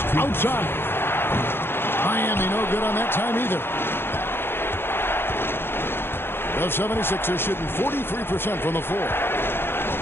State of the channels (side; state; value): right; late; 0.11 ms